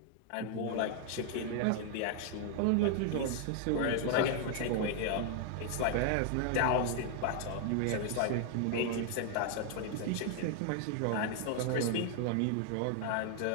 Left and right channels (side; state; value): both; different; correlation 0.00